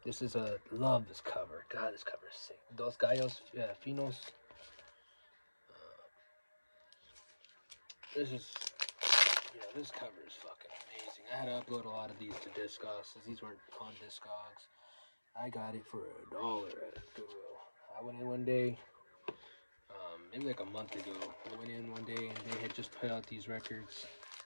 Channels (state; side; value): inverted; both; correlation -1.00